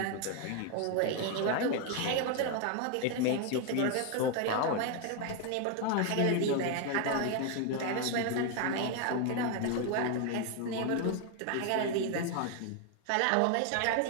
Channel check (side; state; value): both; different; correlation 0.01